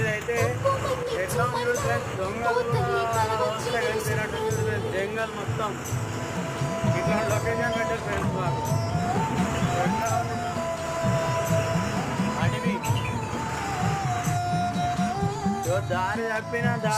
ఎట్లా ఉంది ఫ్రెండ్స్, దొంగలు వస్తే కలిసినట్టు జంగల్ మొత్తం ఇట్లా లొకేషన్ పెట్టారు ఫ్రెండ్స్. మాకు అడవి దారి తప్పినా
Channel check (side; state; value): both; identical; correlation 1.00